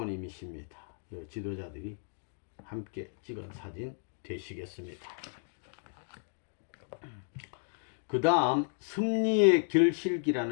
요 지도자들이 함께 찍은 사진 되시겠습니다. 그 다음 섭리의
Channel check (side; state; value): right; silent; 55 dB below the other